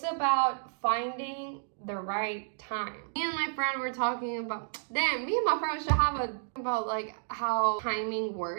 about finding the right time. Me and my friend were talking about, me and my friend should have about like how timing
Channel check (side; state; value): left; silent; digital silence